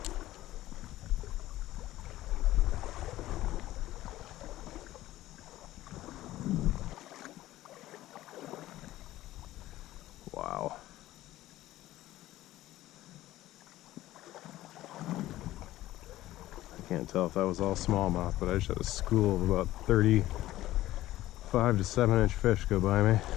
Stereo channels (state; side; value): quieter; right; 15.4 dB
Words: Wow. Can't tell if that was all smallmouth, but I just had a school of about 35 to 7-inch fish go by me.